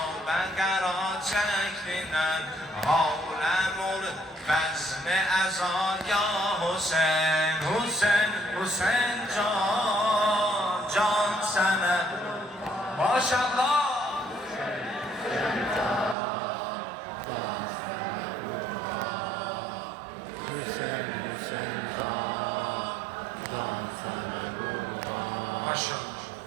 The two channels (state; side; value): drops out; left; at 16.2 s